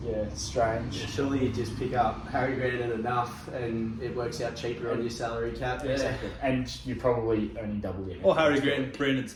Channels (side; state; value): both; identical; correlation 1.00